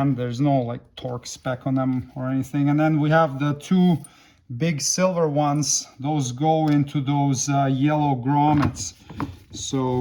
There's no like torque spec on them or anything. And then we have the 2 big silver ones. Those go into those yellow grommets.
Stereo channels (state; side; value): identical; both; correlation 1.00